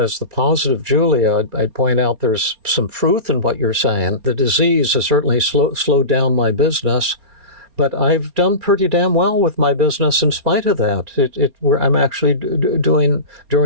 the positive Julia, I'd point out there's some truth in what you're saying. The disease has certainly slowed down my business, but I've done pretty damn well with my business in spite of that. I'm actually doing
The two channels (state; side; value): late; left; 4.3 ms